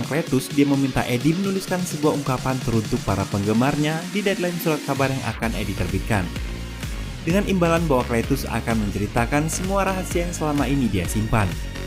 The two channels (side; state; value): both; identical; correlation 1.00